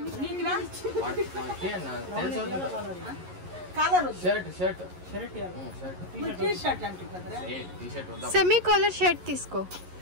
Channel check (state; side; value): late; left; 11 ms